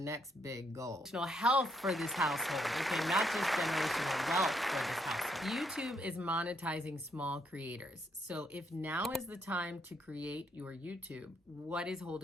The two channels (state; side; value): normal; both; correlation 0.74